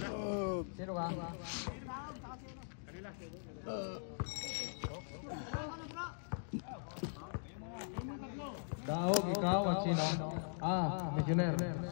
Sino ka? Daog, ikaw at sino? Missioner.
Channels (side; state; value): right; silent; digital silence